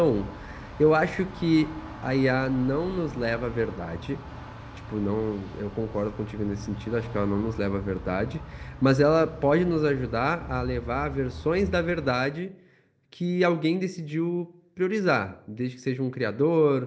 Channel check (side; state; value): both; identical; correlation 1.00